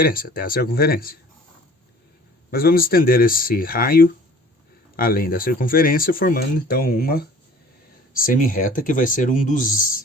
até a circunferência. Mas vamos estender esse raio além da circunferência, formando então uma semi-reta que vai ser um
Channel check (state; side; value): normal; both; correlation 0.48